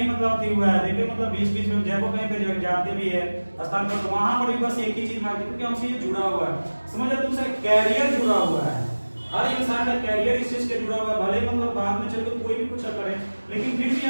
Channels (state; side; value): inverted; both; correlation -1.00